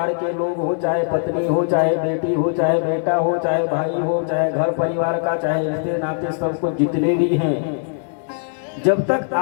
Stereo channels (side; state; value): right; silent; 65 dB below the other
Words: के लोग हो, चाहे पत्नी हो, चाहे बेटी हो, चाहे बेटा हो, चाहे भाई हो, चाहे घर परिवार का, चाहे रिश्ते नाते, सब कुछ जितने भी हैं, जब तक